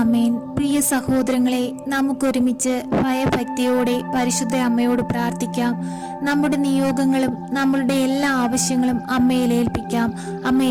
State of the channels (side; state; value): both; identical; correlation 1.00